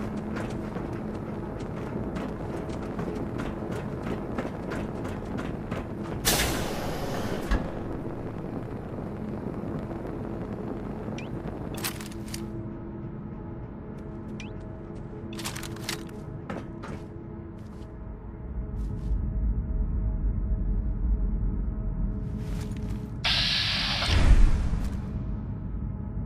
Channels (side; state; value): both; identical; correlation 1.00